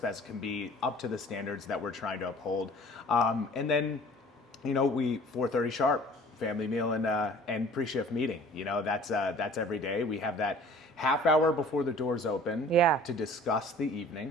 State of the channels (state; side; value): normal; both; correlation 0.49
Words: as can be, up to the standards that we're trying to uphold. And then, we 4:30 sharp, family meal and pre-shift meeting. That's every day. We have that half hour before the doors open to discuss the